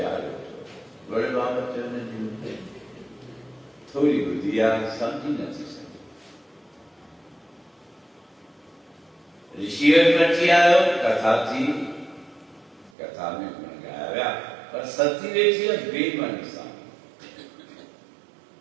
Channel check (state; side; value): drops out; left; at 12.9 s